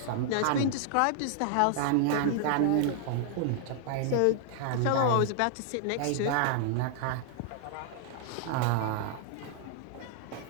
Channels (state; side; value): different; both; correlation -0.01